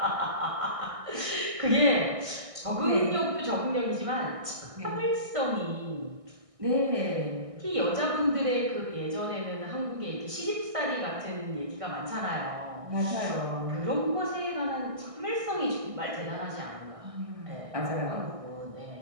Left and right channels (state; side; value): late; left; 1.6 ms